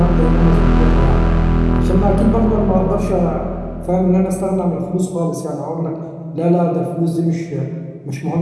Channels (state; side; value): identical; both; correlation 1.00